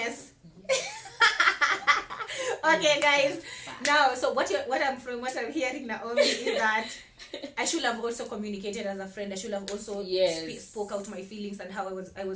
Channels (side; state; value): both; identical; correlation 1.00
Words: Okay, guys. Now, so what I'm hearing, Naomi, is that I should have also communicated as a friend. I should have also Yes. spoke out my feelings and how I